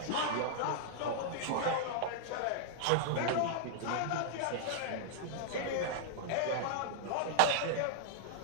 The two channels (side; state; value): both; different; correlation -0.01